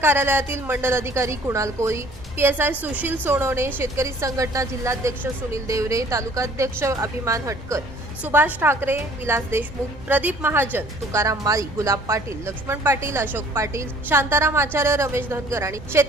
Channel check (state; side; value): normal; both; correlation 0.54